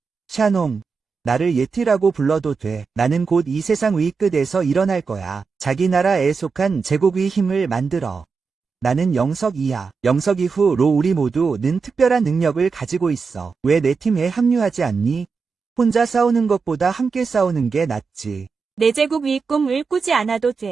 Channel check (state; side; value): quieter; left; 5.0 dB